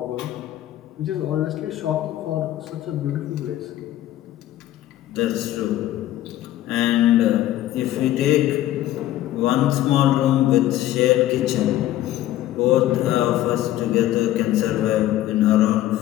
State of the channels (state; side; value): quieter; right; 13.9 dB